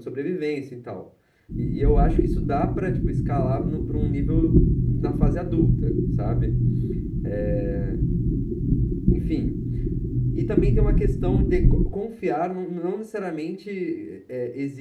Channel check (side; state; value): both; identical; correlation 1.00